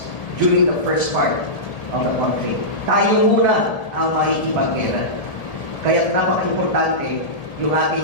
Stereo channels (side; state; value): right; late; 1.8 ms